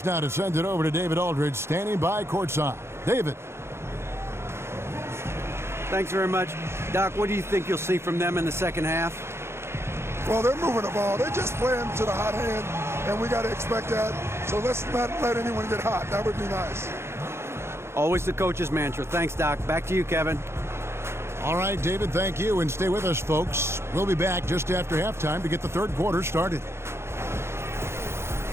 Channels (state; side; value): late; left; 0.12 ms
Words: now to send it over to David Aldridge, standing by courtside. David. Thanks very much. Doc, what do you think you'll see from them in the second half? Well, they're moving the ball. They're just playing to the hot hand, and we got to expect that. So let's not let anyone get hot. That would be nice. Always the coach's mantra. Thanks, Doc. Back to you, Kevin. All right, David, thank you. And stay with us, folks. We'll be back just after halftime to get the third quarter started.